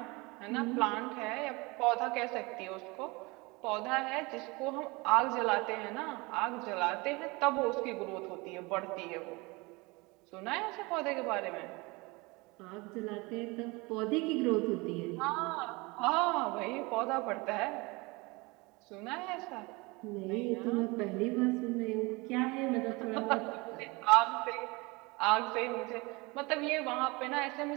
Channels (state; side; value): quieter; left; 25.3 dB